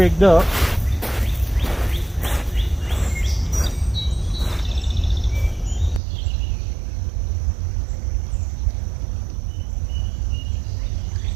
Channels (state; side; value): drops out; left; at 6.0 s